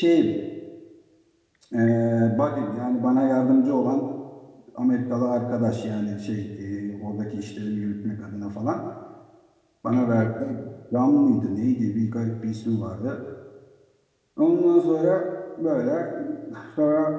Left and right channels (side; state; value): both; identical; correlation 1.00